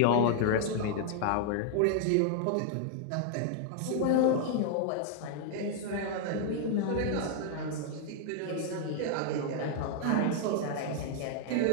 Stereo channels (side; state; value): both; different; correlation 0.00